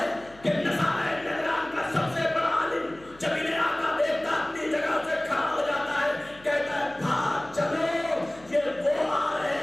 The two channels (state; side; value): noise; left; hum, 25 dB below the sound